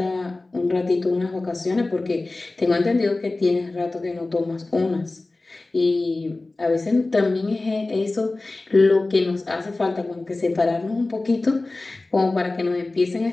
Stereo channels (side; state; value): right; quieter; 3.1 dB